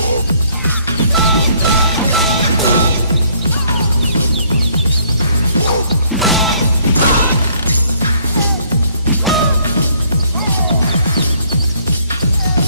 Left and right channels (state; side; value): inverted; both; correlation -0.64